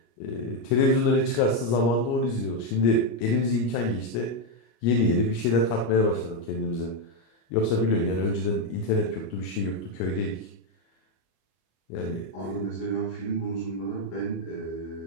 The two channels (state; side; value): late; right; 25 ms